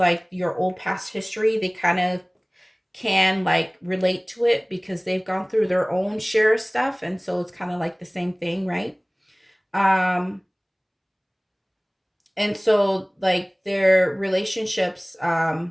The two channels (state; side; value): identical; both; correlation 1.00